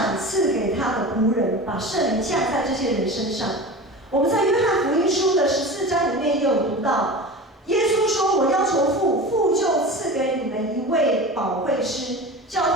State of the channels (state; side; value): normal; both; correlation 0.32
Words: 赐给他的仆人，把圣灵降在这些人身上。我们在约翰福音书的14章里面也有读到，耶稣说：“我要求父，父就赐给你们一位保惠师，叫